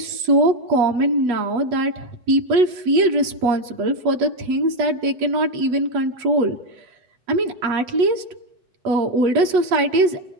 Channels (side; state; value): left; late; 8.1 ms